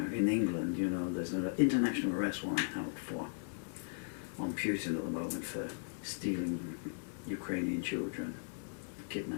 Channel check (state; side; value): silent; right; 53 dB below the other